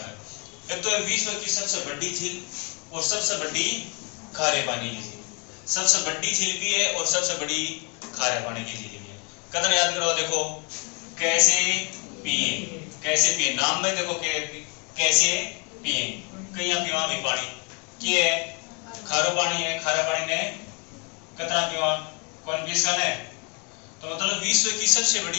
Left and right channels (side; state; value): right; quieter; 34.1 dB